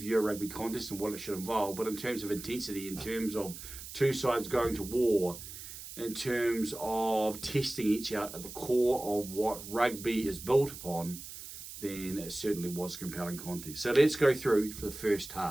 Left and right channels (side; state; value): right; noise; hiss, 12 dB below the sound